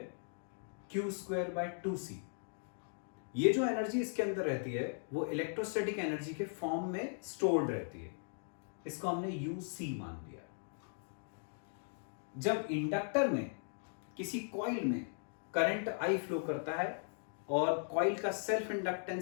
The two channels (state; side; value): silent; right; digital silence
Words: Q²/2C। ये जो एनर्जी इसके अंदर रहती है वो इलेक्ट्रोस्टैटिक एनर्जी के फॉर्म में स्टोर्ड रहती है, इसको हमने UC मान लिया। जब इंडक्टर में किसी कॉइल में करंट I फ्लो करता है और कॉइल का सेल्फ